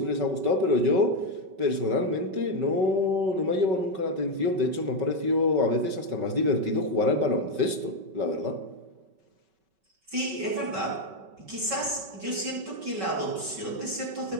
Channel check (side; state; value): left; late; 5.3 ms